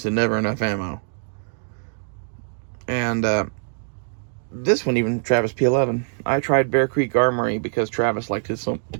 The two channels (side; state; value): left; silent; digital silence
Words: of never enough ammo. And this one, even Travis P11. I tried Bear Creek Armory because Travis liked it